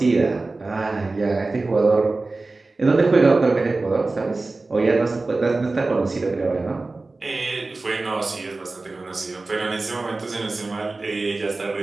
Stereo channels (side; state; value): left; quieter; 3.4 dB